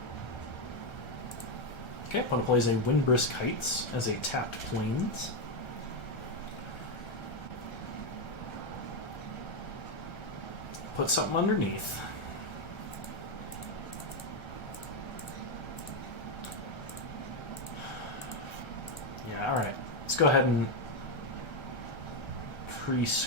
Okay, opponent plays a Windbrisk Heights as a tapped Plains. Put something underneath. Yeah, alright. Let's go ahead and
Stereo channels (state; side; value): late; right; 1.3 ms